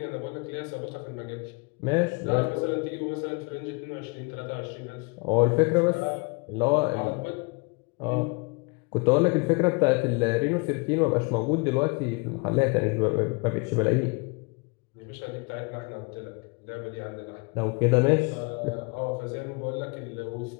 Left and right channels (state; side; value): quieter; right; 30.4 dB